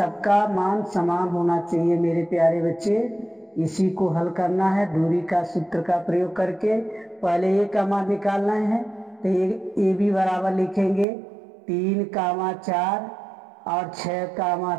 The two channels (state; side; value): drops out; left; at 11.1 s